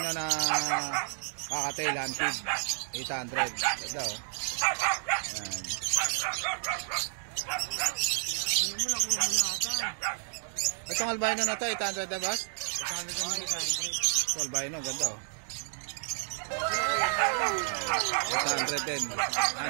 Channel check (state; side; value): silent; left; digital silence